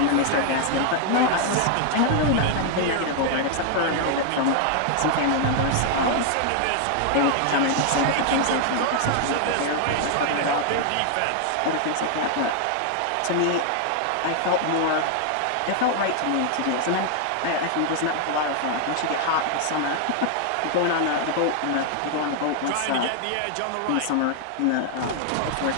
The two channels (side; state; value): both; different; correlation 0.00